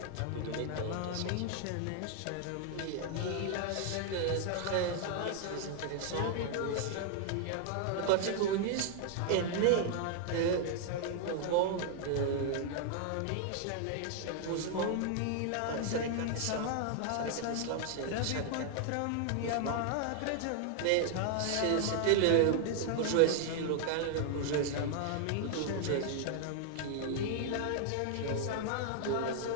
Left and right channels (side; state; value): both; different; correlation 0.00